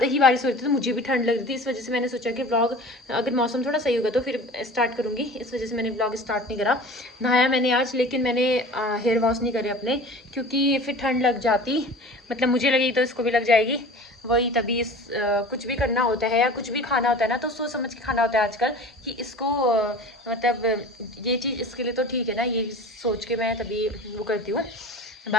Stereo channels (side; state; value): both; normal; correlation 0.39